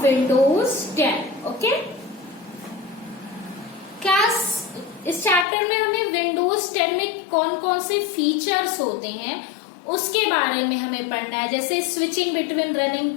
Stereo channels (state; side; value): drops out; right; at 5.5 s